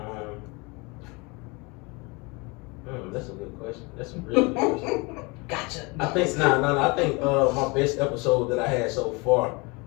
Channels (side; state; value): right; quieter; 27.7 dB